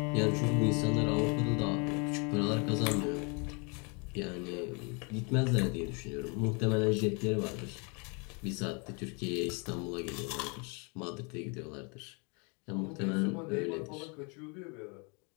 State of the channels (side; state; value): right; quieter; 33.4 dB